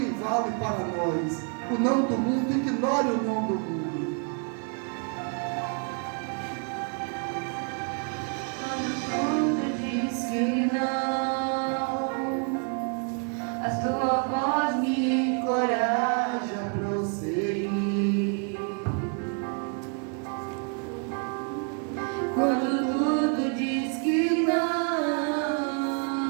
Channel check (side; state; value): left; quieter; 39.9 dB